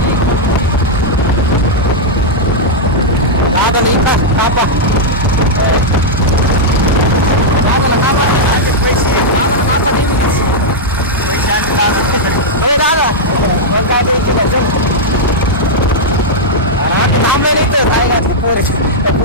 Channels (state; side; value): normal; both; correlation -0.05